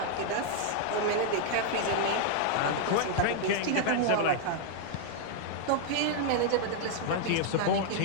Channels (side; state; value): both; different; correlation 0.00